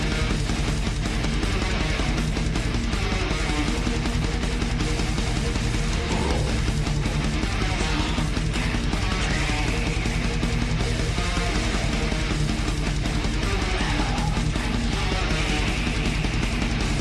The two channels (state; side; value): identical; both; correlation 1.00